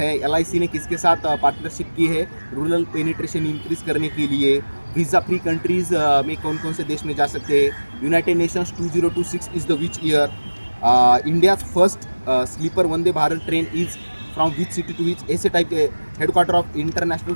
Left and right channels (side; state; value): both; inverted; correlation -1.00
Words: LIC ने किसके साथ पार्टनरशिप की है रूरल पेनिट्रेशन इंक्रीज करने के लिए। वीज़ा फ्री कंट्रीज में कौन कौन से देश में जा सकते हैं। United Nations 2026 is the which year. India first sleeper Vande Bharat train is from which city to which, ऐसे टाइप के। Headquarter of International